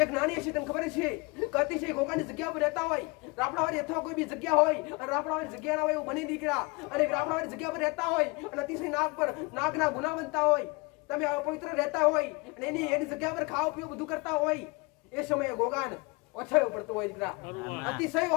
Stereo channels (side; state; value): right; quieter; 27.5 dB